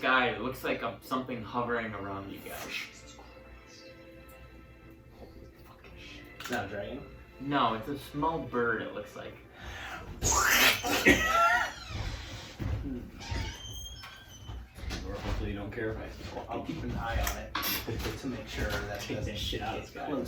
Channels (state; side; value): identical; both; correlation 1.00